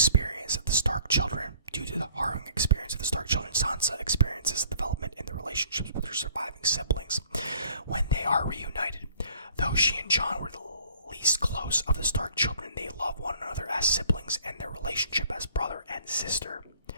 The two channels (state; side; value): inverted; both; correlation -0.56